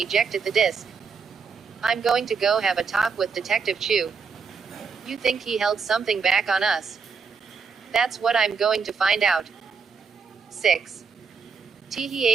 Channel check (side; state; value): left; quieter; 5.5 dB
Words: the disk. I'm going to go have a talk with Detective Chu. You think he held something back on us? That's what I'm going to find out. 6.